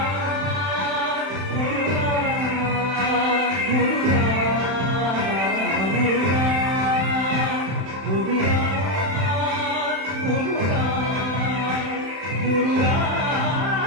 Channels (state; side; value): late; left; 31 ms